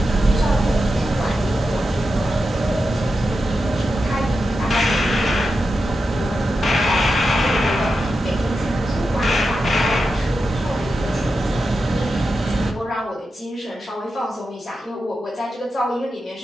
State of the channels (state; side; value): normal; both; correlation 0.89